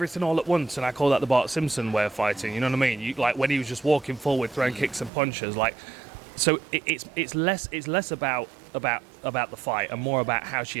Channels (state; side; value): drops out; left; at 5.1 s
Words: all at once, and I call that the Bart Simpson way of fighting. You know what I mean? Like when he was just walking forward, throwing kicks and punches, like. So it's less about the fight and more about how she